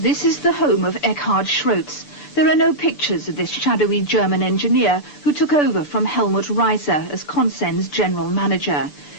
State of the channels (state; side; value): late; right; 6.9 ms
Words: is the home of Eckhard Schrotz. There are no pictures of this shadowy German engineer who took over from Helmut Reiser as Consen's general manager.